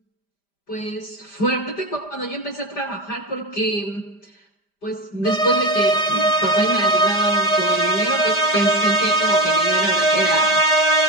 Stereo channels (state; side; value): late; right; 5.0 ms